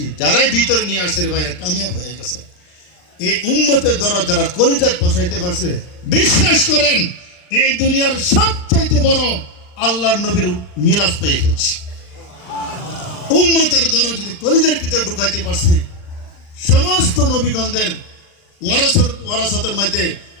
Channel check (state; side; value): late; right; 40 ms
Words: যারাই ভিতরে নিয়ে আসে রে ভাইরা কামিয়াব হয়ে গেছে। এই উম্মতের দরদ যারা কলিজাত বসাইতে পারছে, বিশ্বাস করেন এই দুনিয়ার সবচাইতে বড় আল্লাহর নবীর মিরাজ পেয়ে গেছে। উম্মতের দরদ যদি কলিজার ভিতরে ঢুকাইতে পারছে, সমস্ত নবীগণদের ওয়ারাসতের মধ্যে